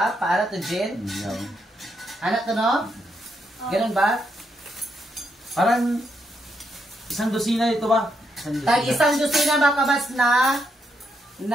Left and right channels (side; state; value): both; normal; correlation 0.79